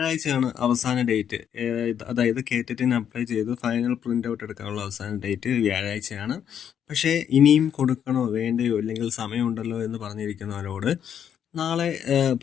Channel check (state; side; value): quieter; right; 8.8 dB